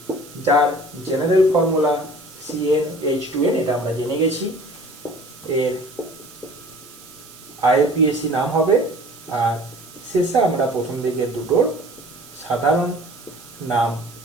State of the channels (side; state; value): right; noise; hiss, 20 dB below the sound